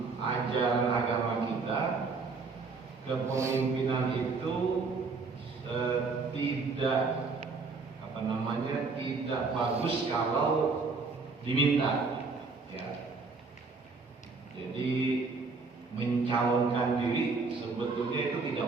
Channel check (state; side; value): quieter; left; 4.3 dB